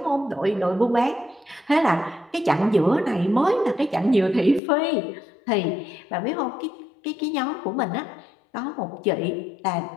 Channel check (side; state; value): right; drops out; at 4.6 s